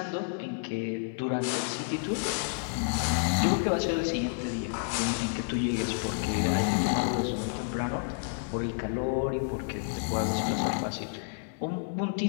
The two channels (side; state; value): right; silent; 58 dB below the other